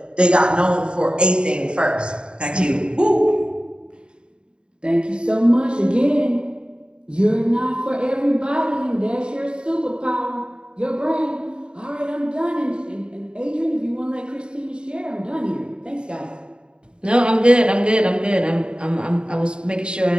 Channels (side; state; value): left; late; 0.051 ms